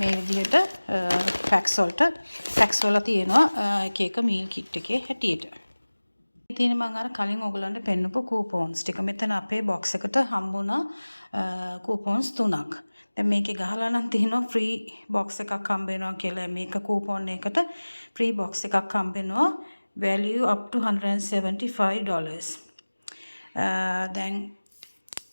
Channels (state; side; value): inverted; both; correlation -1.00